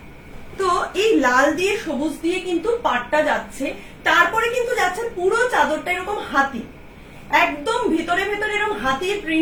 তো এই লাল দিয়ে সবুজ দিয়ে কিন্তু পাটটা যাচ্ছে, তারপরে কিন্তু যাচ্ছে পুরো চাদরটা এরকম হাতি, একদম ভিতরে ভেতরে এরকম হাতির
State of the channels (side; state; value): both; identical; correlation 1.00